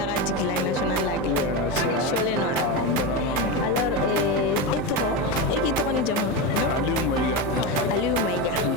de la nationale lag. Alors, et toi? Et qui t'en est déjà? Aliou Maïga. Aliou Maïga.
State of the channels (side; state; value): both; normal; correlation 0.14